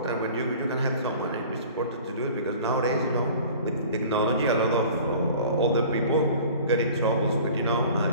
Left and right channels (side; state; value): both; inverted; correlation -0.45